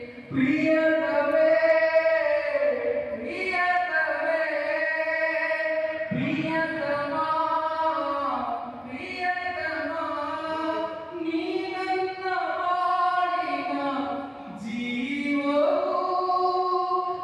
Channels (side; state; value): both; identical; correlation 1.00